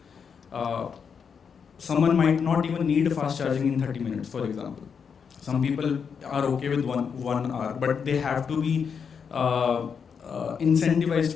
Someone might not even need fast charging in 30 minutes, for example. Some people are okay with one hour, but they have to be incentivized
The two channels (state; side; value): quieter; right; 6.5 dB